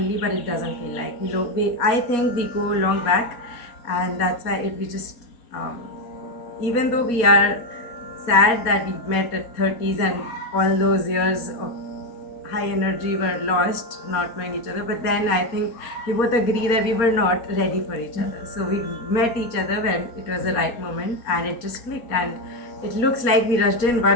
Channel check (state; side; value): late; right; 4.2 ms